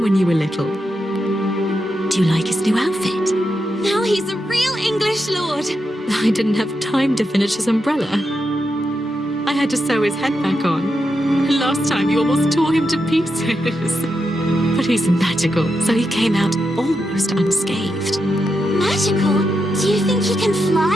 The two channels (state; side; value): normal; both; correlation 0.86